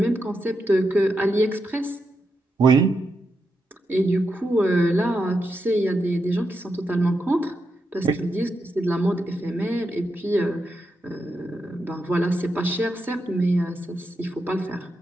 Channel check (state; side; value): normal; both; correlation 0.85